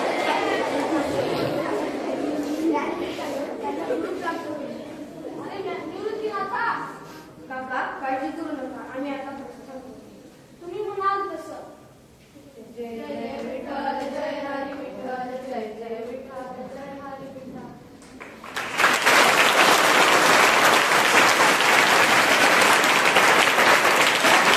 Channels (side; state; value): both; identical; correlation 1.00